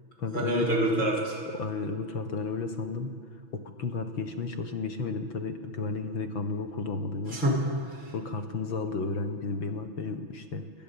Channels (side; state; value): right; late; 6.1 ms